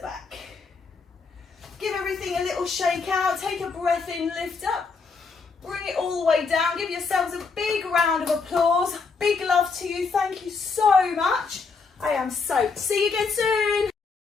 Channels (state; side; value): quieter; right; 4.7 dB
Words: Give everything a little shake out, take a breath in, lift up. Bring it all the way down. Give yourselves a big round of applause. Big love to you. Thank you so much. I am soaked. See you again soon.